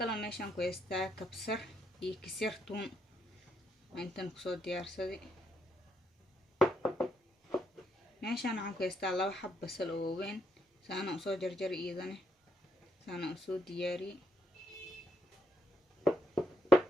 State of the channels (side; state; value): both; normal; correlation 0.76